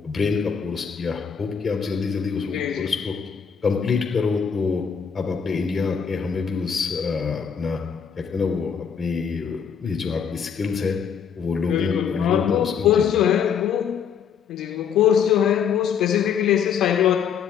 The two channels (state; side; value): quieter; right; 7.2 dB